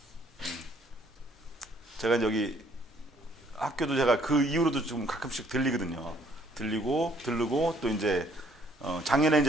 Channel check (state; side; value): normal; both; correlation 0.63